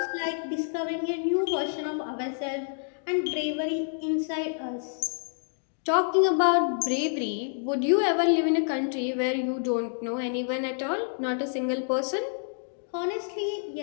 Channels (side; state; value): right; silent; digital silence